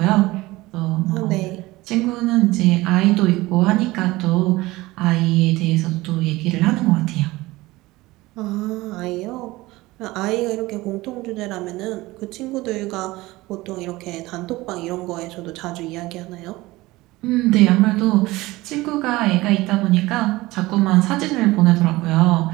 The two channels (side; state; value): left; quieter; 19.6 dB